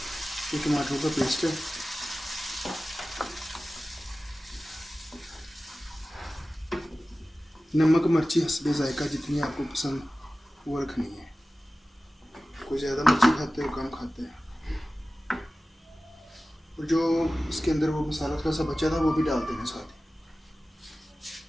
ये टमाटरों का पेस्ट है। नमक मिर्ची हस्बे जायका जितनी आपको पसंद वो रखनी है। कोई ज़्यादा मिर्ची खाते हो कम खाते हैं। और जो इसके अंदर वो मसाला थोड़ा सा बचा था वो भी डाल देना साथ ही।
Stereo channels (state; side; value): normal; both; correlation 0.96